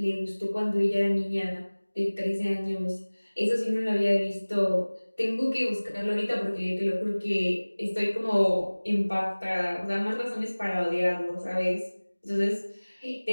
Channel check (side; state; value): both; inverted; correlation -1.00